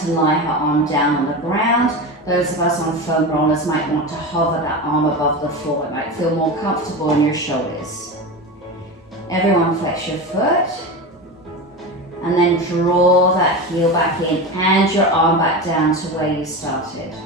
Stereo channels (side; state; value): both; normal; correlation 0.24